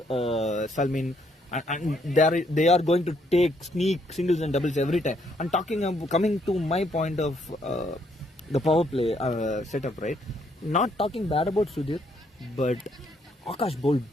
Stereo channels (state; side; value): normal; both; correlation 0.71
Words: Salman, and they are going to take sneak singles and doubles every time. And coming to my point of the power play setup, right? Not talking bad about Sudhir, but Akash bowled